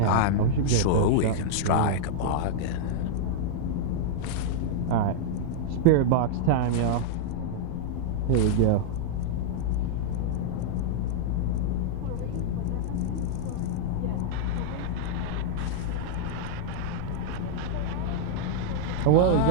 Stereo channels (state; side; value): different; both; correlation -0.01